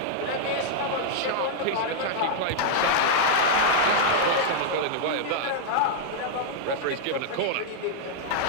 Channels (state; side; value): different; both; correlation -0.01